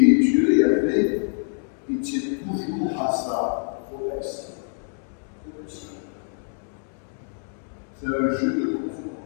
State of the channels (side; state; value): right; silent; digital silence